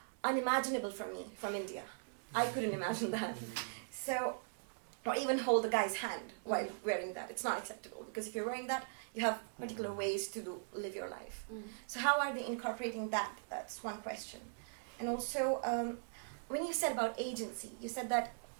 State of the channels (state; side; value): silent; left; digital silence